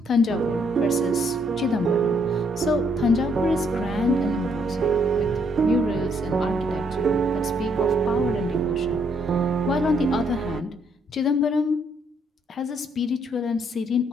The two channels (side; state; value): both; normal; correlation 0.71